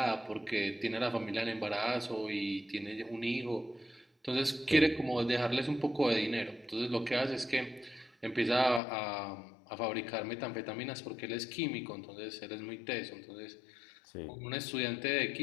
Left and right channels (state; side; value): drops out; right; at 8.8 s